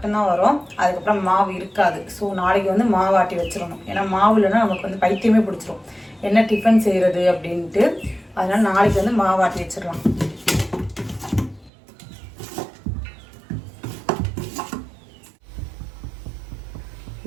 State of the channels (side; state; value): left; drops out; at 11.7 s